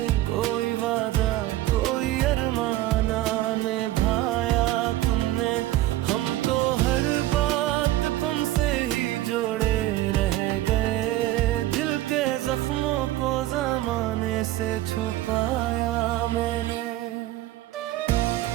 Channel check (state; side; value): quieter; left; 15.5 dB